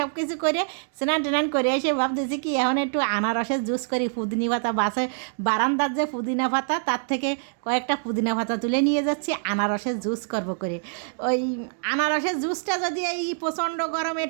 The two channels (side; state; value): left; silent; digital silence